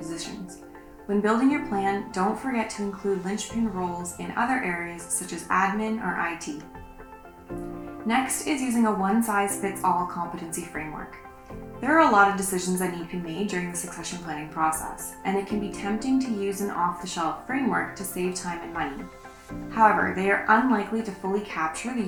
When building your plan, don't forget to include linchpin roles in other areas such as admin or IT. Next is using a one-size-fits-all competency framework. There are a lot of decisions that need to be made during the succession planning process, and it can be tempting to use an off-the-shelf framework to save time and money. However, they are unlikely to fully capture the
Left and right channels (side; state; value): both; identical; correlation 1.00